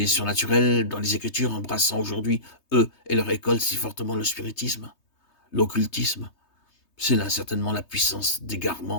surnaturel dans les Écritures, embrassant aujourd'hui, eux et leur école, si fortement le spiritisme, l'occultisme. C'est là certainement la puissance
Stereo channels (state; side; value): late; right; 3.2 ms